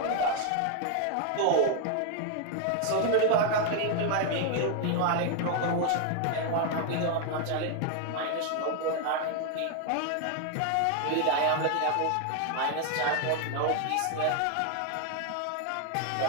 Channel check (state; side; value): different; both; correlation 0.01